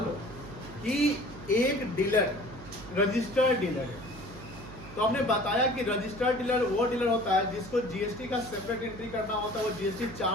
लो कि एक डीलर रजिस्टर्ड डीलर है, तो हमने बताया कि रजिस्टर्ड डीलर वो डीलर होता है जिसको जीएसटी का सेपरेट एंट्री करना होता है, वो जीएसटी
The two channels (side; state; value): right; noise; hum, 16 dB below the sound